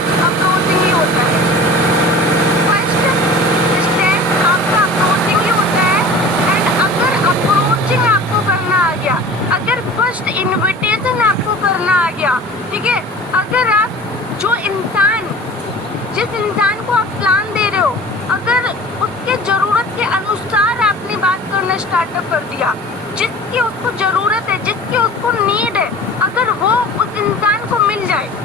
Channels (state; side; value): normal; both; correlation 0.40